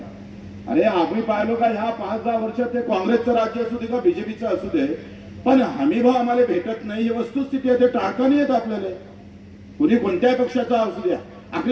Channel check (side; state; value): both; identical; correlation 1.00